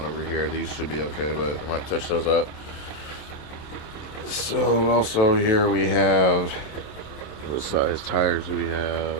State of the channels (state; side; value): late; right; 27 ms